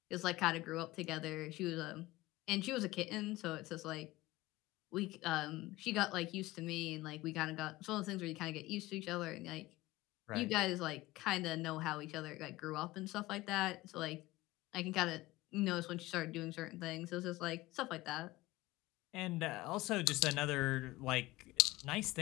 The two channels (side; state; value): right; quieter; 18.7 dB